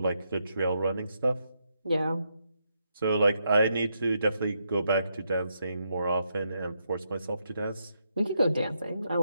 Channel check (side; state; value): both; inverted; correlation -0.80